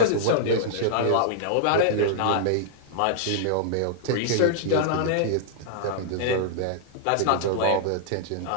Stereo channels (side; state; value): both; different; correlation -0.01